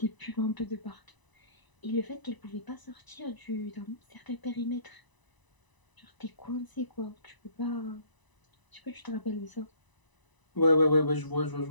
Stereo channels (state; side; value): late; right; 1.0 ms